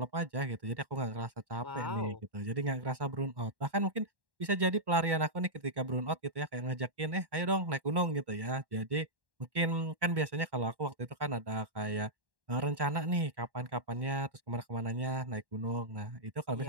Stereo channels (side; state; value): left; late; 1.1 ms